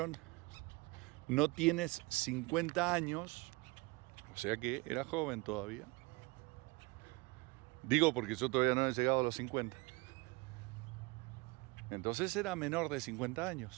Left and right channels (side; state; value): left; quieter; 25.5 dB